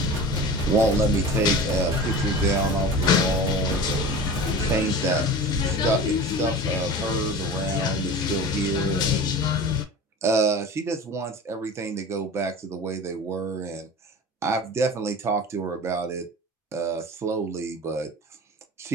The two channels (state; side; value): normal; both; correlation 0.35